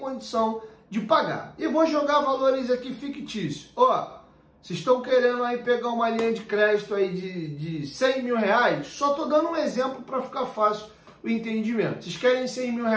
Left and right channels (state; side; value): identical; both; correlation 1.00